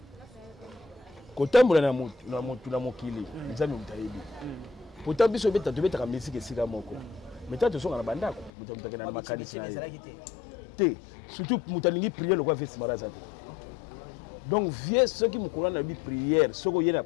Kotambola na mutu na mokili nzambe mutayebi. Pourtant biso beta tobeta musique esika moko. Meta to songa na bandako mutu na makanisi. Te surtout mutalingi prière le quoi fait Simaraza. OK. Donc vieux ceux qui me connaissent na bi prière, ceux qui y na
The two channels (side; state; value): right; drops out; at 8.5 s